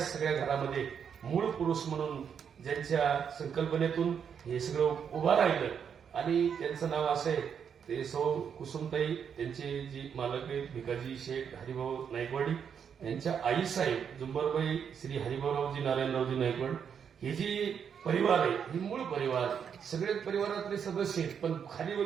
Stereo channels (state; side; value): quieter; left; 7.5 dB